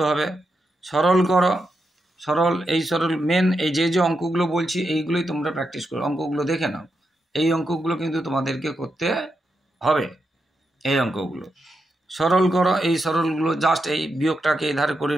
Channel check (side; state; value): both; normal; correlation 0.85